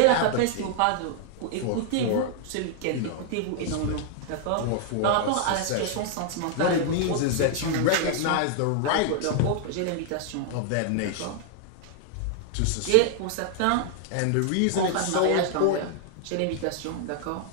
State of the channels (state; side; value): different; both; correlation 0.00